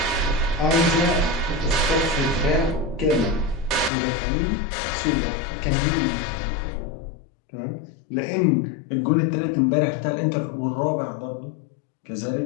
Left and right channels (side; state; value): right; drops out; at 3.9 s